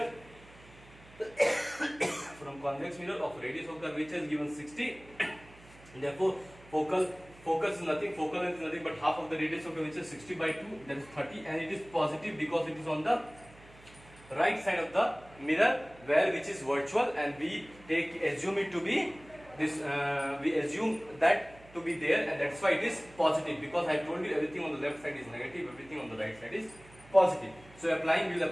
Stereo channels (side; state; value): right; noise; hum, 23 dB below the sound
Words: from convex mirror of radius of curvature is given 60. Therefore, focus is nothing, focal length is nothing but half of the radius of curvature 60 by 2, that is 30, and it is positive because it is on the right side of the mirror where which is virtual, and we assume it to be this. We assume that to be there, and that's why it is positive because I told you everything on the left side is negative, everything on the right side is positive. So we will